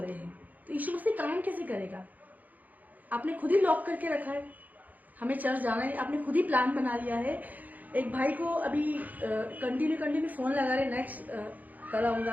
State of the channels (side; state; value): left; late; 0.081 ms